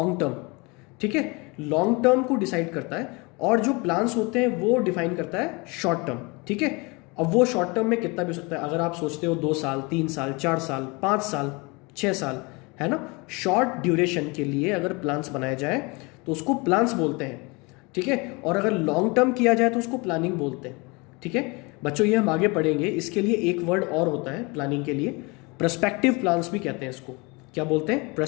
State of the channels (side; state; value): right; quieter; 27.6 dB